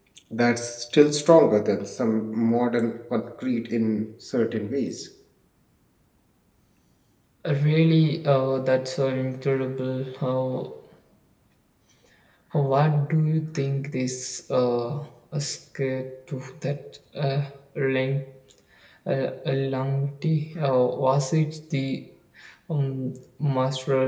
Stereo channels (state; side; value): identical; both; correlation 1.00